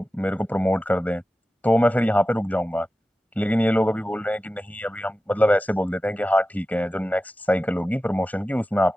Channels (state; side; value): normal; both; correlation 0.94